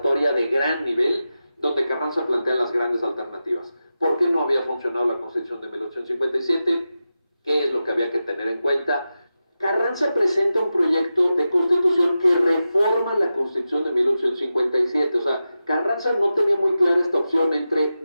de gran nivel, donde Carranza plantea las grandes alternativas. ¿Por qué no había funcionado la Constitución de 1857? ¿Qué es lo que había que tener en cuenta? Carranza presenta un proyecto de constitución que reforma la Constitución de 1857. O sea, Carranza no tenía muy clara esta opción entre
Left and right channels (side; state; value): both; inverted; correlation -0.92